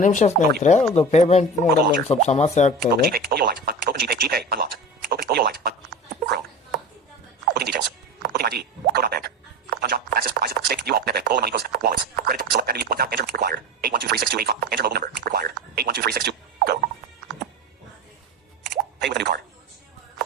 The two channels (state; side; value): normal; both; correlation 0.29